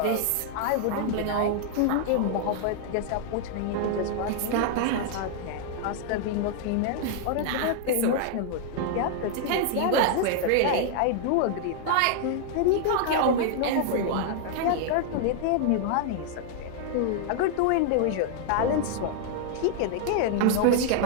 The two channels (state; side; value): different; both; correlation 0.00